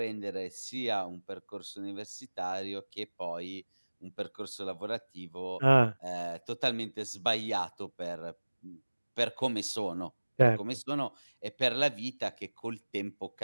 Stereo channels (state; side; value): inverted; both; correlation -1.00